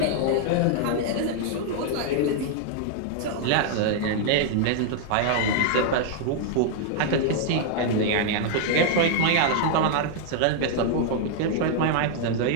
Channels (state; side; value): different; both; correlation -0.01